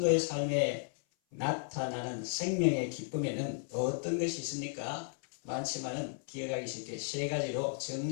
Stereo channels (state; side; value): silent; right; 55 dB below the other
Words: 삶에 나타나는 생명의 기쁨에는 어떤 것이 있습니까? 많지만은 기억하기 쉽게 세 가지로